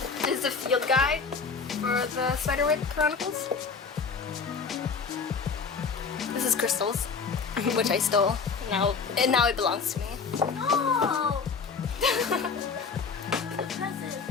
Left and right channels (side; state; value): right; quieter; 5.2 dB